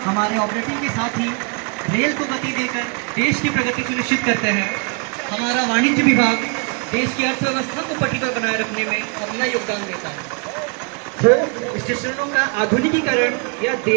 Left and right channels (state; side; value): quieter; left; 35.4 dB